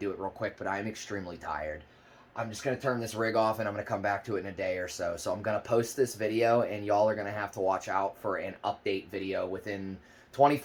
it real quick, but I'm extremely tired. I'm just going to turn this rig off, and I'm going to come back to it in a day or so. So I'm going to post this video, and y'all are going to have to watch out for an update video within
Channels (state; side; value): identical; both; correlation 1.00